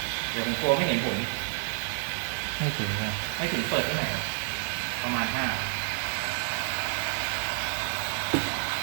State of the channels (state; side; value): silent; left; digital silence